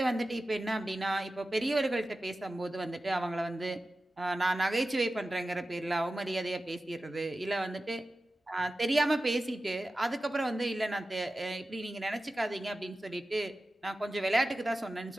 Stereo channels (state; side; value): normal; both; correlation 0.94